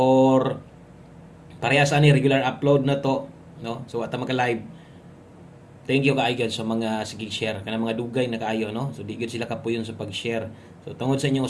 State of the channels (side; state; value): both; identical; correlation 1.00